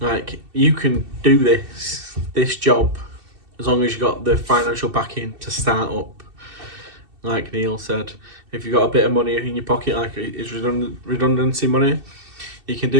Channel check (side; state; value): left; late; 2.7 ms